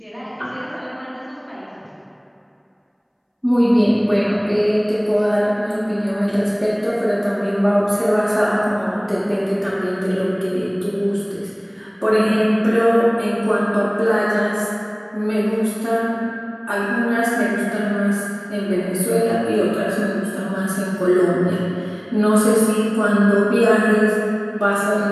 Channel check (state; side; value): identical; both; correlation 1.00